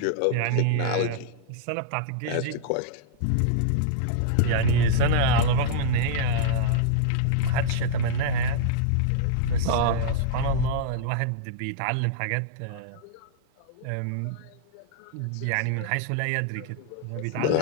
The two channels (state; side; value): different; both; correlation -0.02